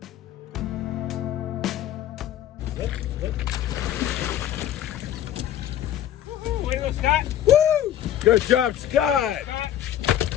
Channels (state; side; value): quieter; right; 11.1 dB